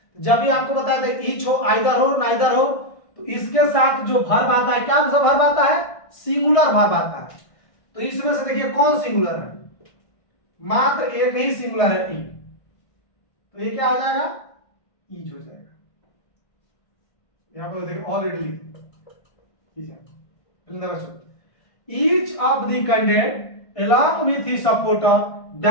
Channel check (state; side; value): late; right; 1.6 ms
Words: जब भी आपको बताया था ईच हो, आइदर हो, नाइदर हो, तो इसके साथ जो वर्ब आता है, क्या वर्ब आता है, सिंगुलर वर्ब आता है। तो इसमें से देखिए कौन सिंगुलर है, मात्र एक ही सिंगुलर है, ई। तो ये क्या हो जाएगा, ईज हो जाएगा। यहां पर देखिए already each of the candidate along with his supporter